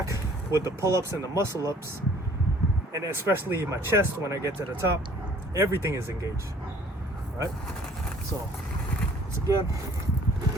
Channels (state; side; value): normal; both; correlation 0.54